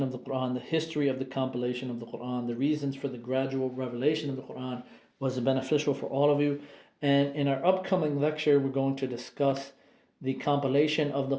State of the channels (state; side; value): identical; both; correlation 1.00